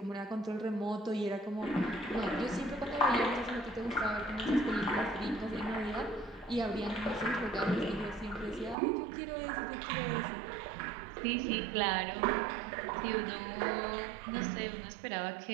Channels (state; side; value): drops out; left; at 8.8 s